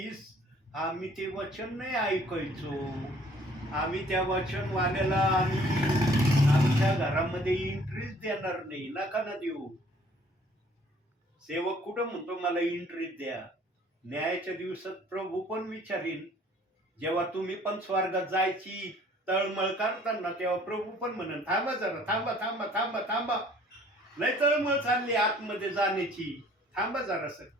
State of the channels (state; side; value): normal; both; correlation 0.56